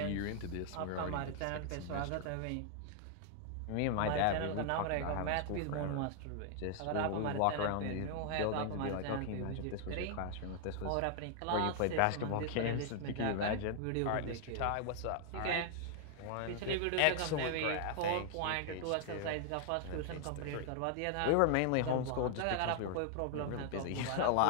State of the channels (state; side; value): different; both; correlation 0.00